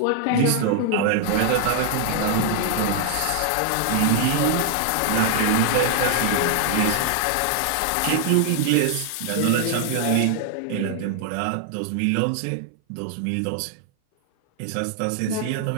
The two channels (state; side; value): different; both; correlation 0.00